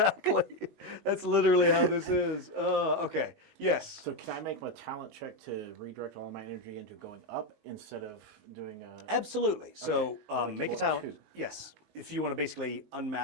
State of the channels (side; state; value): left; late; 19 ms